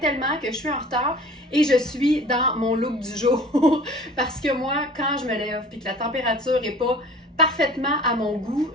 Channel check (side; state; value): both; normal; correlation 0.45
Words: que je suis en retard et je suis dans mon look du jour. Parce que moi, quand je me lève et que la température n'est pas parfaitement à mon goût,